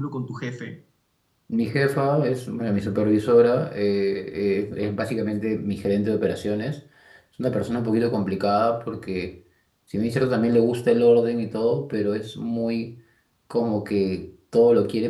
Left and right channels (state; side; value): identical; both; correlation 1.00